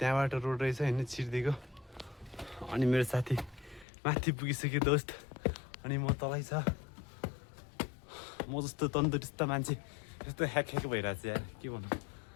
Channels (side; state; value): right; drops out; at 3.9 s